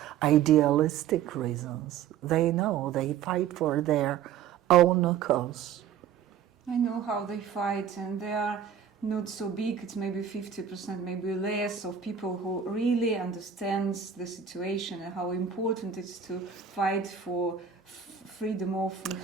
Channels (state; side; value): quieter; left; 8.1 dB